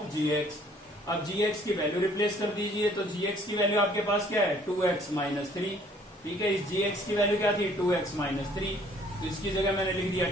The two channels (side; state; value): both; normal; correlation 0.58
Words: जी एक्स। अब gx की वैल्यू रिप्लेस कर दीजिए, तो gx की वैल्यू आपके पास क्या है 2x माइनस 3, ठीक है। इस gx की वैल्यू क्या थी 2x माइनस 3, तो इसकी जगह मैंने लिख दिया